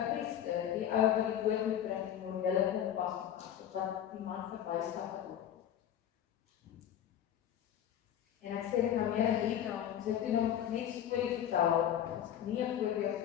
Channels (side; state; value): right; quieter; 10.3 dB